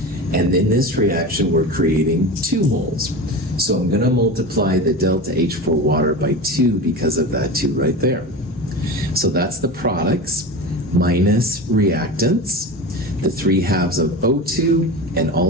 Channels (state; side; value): normal; both; correlation 0.27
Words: and in this reaction we're creating 2 moles. So I'm going to multiply the delta H for water by 2 because of that 2 right there. So that's the products minus reactants, the 3/2 of O2, and